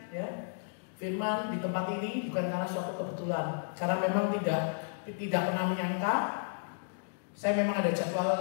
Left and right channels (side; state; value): right; silent; digital silence